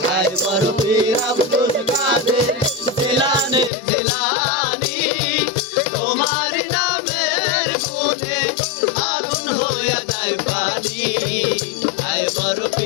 হায় বড় পীর আব্দুল কাদের জিলানের জিলানি তোমার নামের গুণে আগুন হইয়া যায় পানি হায় বড়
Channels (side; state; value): right; drops out; at 3.7 s